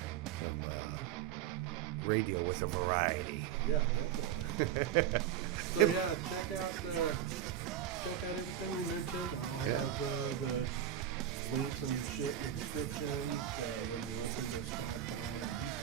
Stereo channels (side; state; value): left; quieter; 10.4 dB